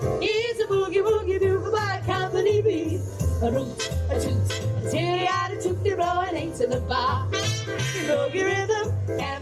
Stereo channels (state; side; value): identical; both; correlation 1.00